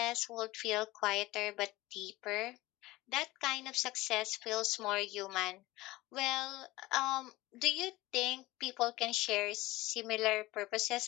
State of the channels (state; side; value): quieter; right; 19.2 dB